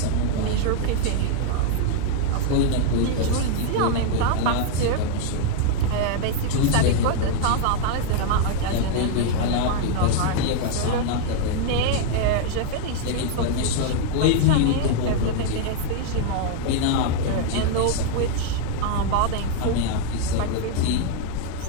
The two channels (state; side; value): different; both; correlation 0.00